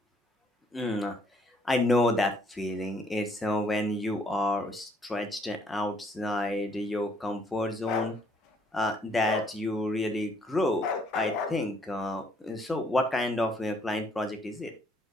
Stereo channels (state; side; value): normal; both; correlation 0.65